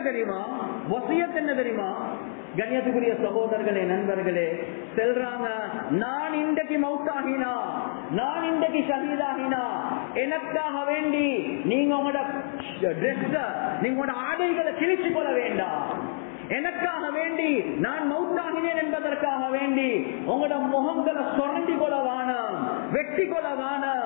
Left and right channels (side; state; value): right; silent; digital silence